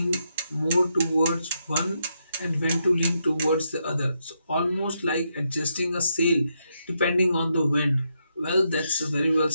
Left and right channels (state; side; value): inverted; both; correlation -0.80